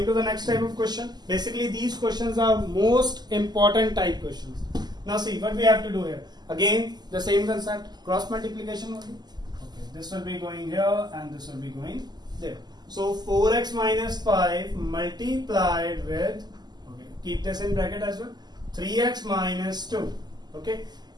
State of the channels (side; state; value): left; late; 0.20 ms